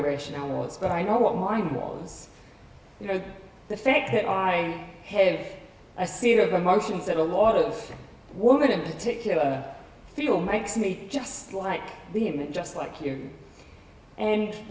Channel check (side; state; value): both; identical; correlation 1.00